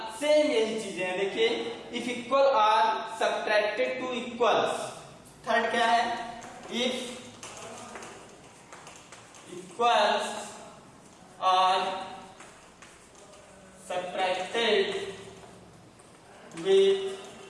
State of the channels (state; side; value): identical; both; correlation 1.00